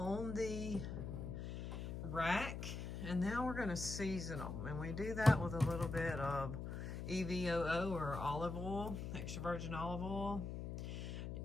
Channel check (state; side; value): noise; left; hum, 5 dB below the sound